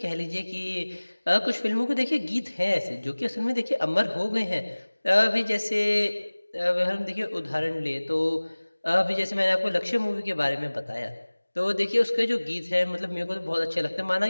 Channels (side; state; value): both; inverted; correlation -1.00